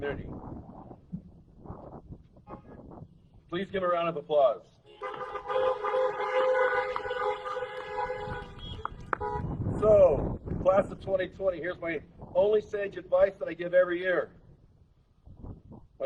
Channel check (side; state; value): both; identical; correlation 1.00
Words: Please give a round of applause. So, class of 2020, here's my only sage advice that I give every year.